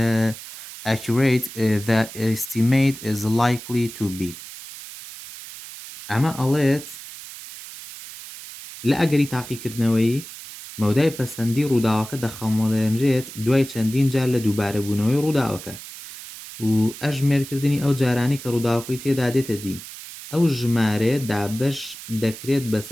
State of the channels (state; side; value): noise; right; hiss, 13 dB below the sound